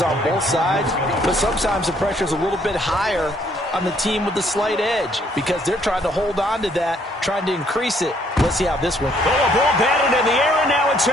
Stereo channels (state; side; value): normal; both; correlation 0.66